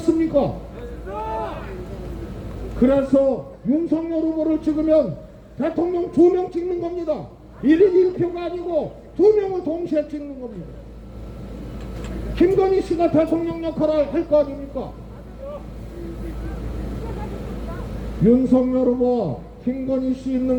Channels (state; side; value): identical; both; correlation 1.00